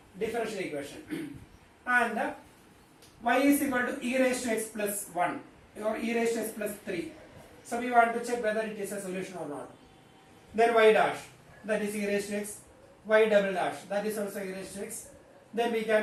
differential equation. And y is equal to e raised to x plus 1 or e raised to x plus 3. So we want to check whether it is a solution or not. Then y dash, that is e raised to x, y double dash, that is also e raised to x. Then we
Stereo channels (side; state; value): both; identical; correlation 1.00